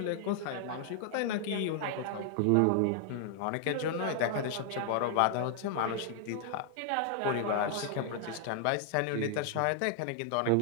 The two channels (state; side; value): different; both; correlation 0.00